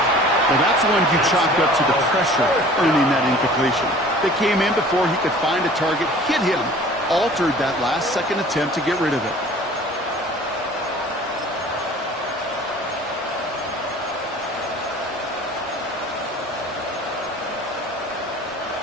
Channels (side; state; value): both; normal; correlation 0.47